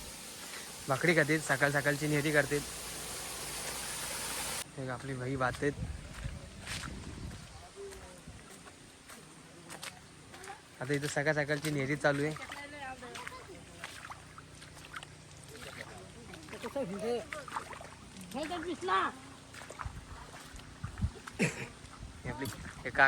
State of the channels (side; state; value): both; identical; correlation 1.00